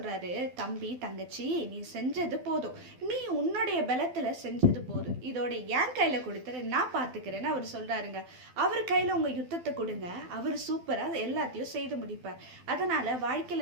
தம்பி தங்கச்சி நீ செஞ்சது போதும், நீ உன்னுடைய பலத்துல செஞ்சது போதும், இதோட என் கையில கொடுத்துரு, நான் பார்த்துக்கிறேன்னு அவர் சொல்றாருங்க. அவர் கையில உங்க யுத்தத்தை கொடுங்க, அவர் சூப்பரா எல்லாத்தையும் செய்து முடிப்பார். அதனால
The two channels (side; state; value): left; late; 12 ms